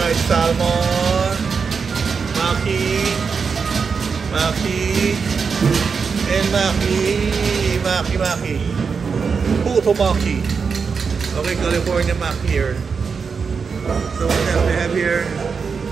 salmon, maki, and maki. Puto maki. Okay, California maki here. So what else we have here?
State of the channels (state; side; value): quieter; left; 5.6 dB